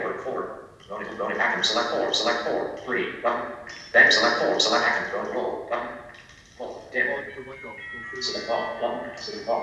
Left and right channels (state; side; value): identical; both; correlation 1.00